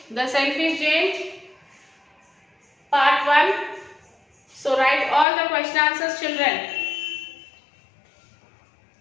the selfish giant, part 1. So write all the question answers, children.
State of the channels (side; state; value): right; drops out; at 5.2 s